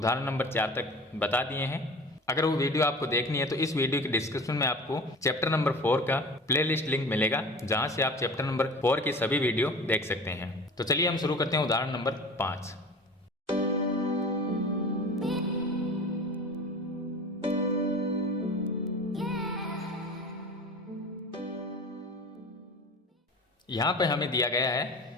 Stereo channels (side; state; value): both; normal; correlation 0.38